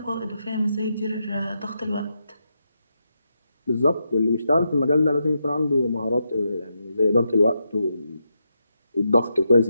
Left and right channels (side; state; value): both; inverted; correlation -0.84